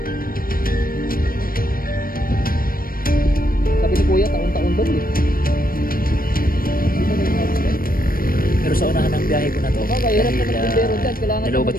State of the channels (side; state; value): right; late; 0.42 ms